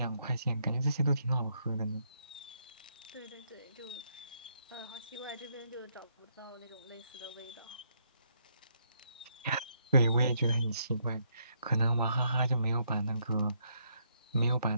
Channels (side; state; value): both; inverted; correlation -0.74